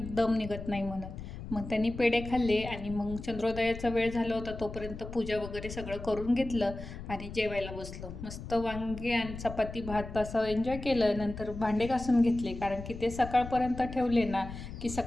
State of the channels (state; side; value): noise; left; rumble, 10 dB below the sound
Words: दम निघत नाही म्हणून. मग त्यांनी पेढे खाल्ले आणि मग चंद्रोदयाचा वेळ झाला होता, तोपर्यंत पूजा वगैरे सगळं करून घेतलं आणि जेवायला बसलो. मस्त वांगे आणि चपाती भात असं एन्जॉय केलं. नंतर भांडे घासून घेतले, कारण की ते सकाळपर्यंत ठेवले ना की